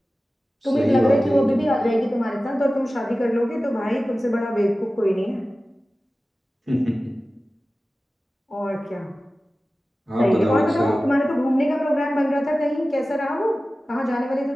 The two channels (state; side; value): normal; both; correlation 0.96